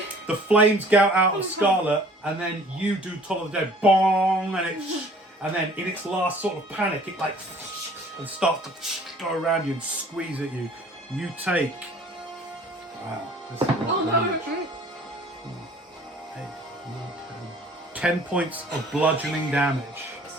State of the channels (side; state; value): both; normal; correlation 0.52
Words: the flames gout out of Scarlet, and then you do Toll of the Dead, bong, and then in its last sort of panic, it like and starts to go around you and squeeze at you. You take this is a lot Oh of no. damage. 10 points of bludgeoning damage.